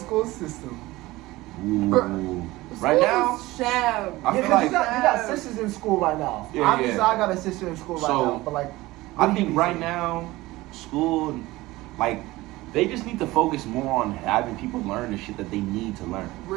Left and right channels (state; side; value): quieter; left; 19.1 dB